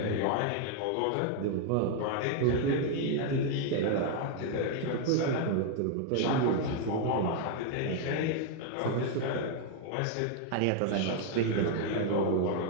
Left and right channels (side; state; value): both; different; correlation 0.01